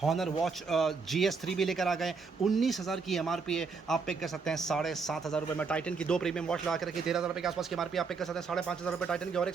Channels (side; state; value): left; quieter; 4.9 dB